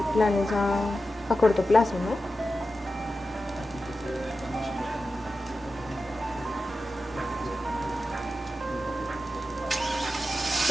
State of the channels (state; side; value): normal; both; correlation 0.92